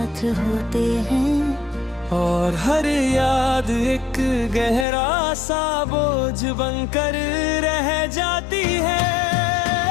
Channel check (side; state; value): right; drops out; at 4.9 s